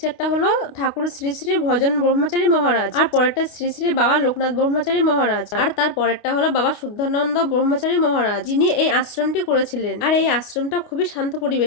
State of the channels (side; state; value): right; late; 28 ms